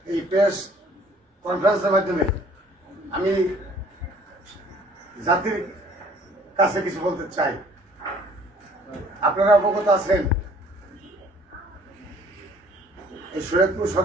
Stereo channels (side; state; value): both; normal; correlation 0.56